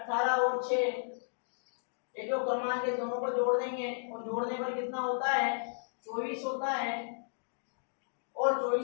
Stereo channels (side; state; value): right; silent; digital silence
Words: और 6, ये जो क्रमांक है दोनों को जोड़ देंगे, और जोड़ने पर कितना होता है, 24 होता है। और